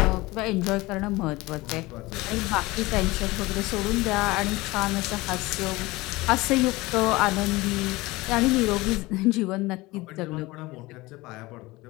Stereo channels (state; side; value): quieter; right; 20.9 dB